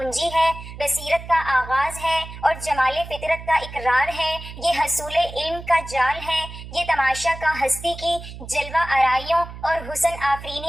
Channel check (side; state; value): right; noise; hum, 13 dB below the sound